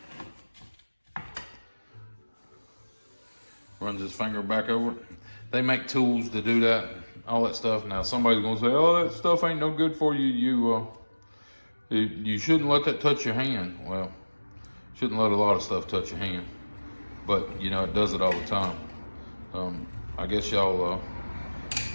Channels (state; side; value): inverted; both; correlation -1.00